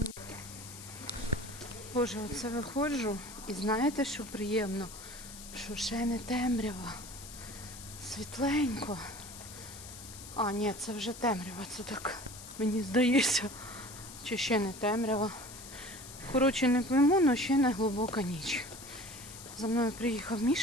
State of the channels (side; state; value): left; noise; hiss, 14 dB below the sound